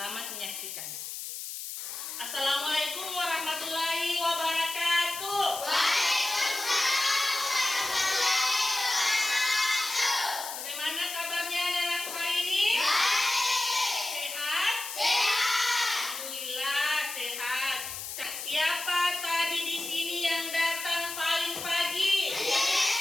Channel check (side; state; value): left; noise; hiss, 8 dB below the sound